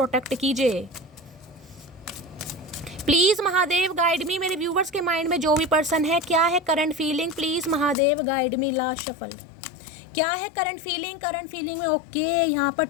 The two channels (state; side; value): drops out; right; at 8.0 s